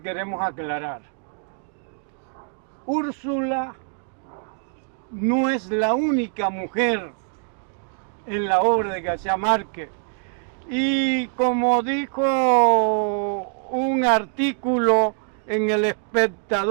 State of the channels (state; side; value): silent; left; 57 dB below the other